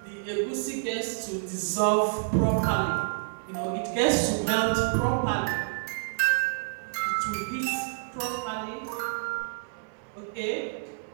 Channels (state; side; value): silent; left; digital silence